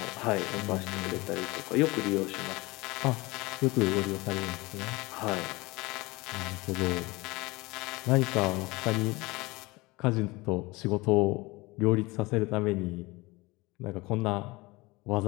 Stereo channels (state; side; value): quieter; right; 22.9 dB